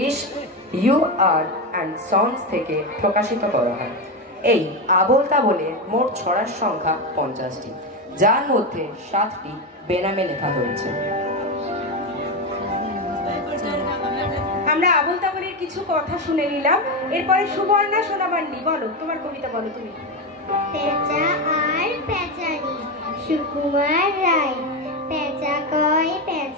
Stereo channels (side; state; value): both; normal; correlation 0.13